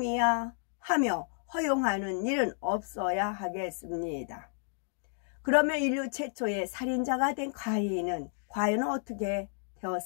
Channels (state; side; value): silent; right; digital silence